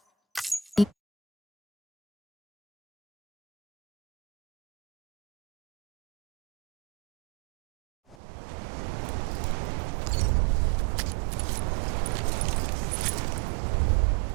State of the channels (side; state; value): left; drops out; at 8.2 s